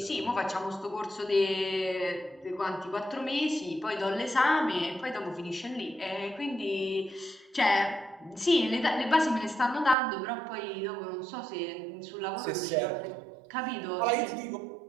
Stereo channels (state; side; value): drops out; left; at 10.0 s